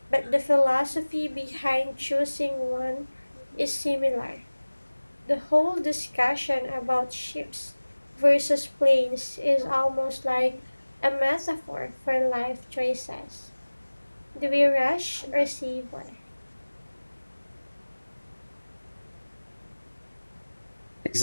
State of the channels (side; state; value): both; inverted; correlation -1.00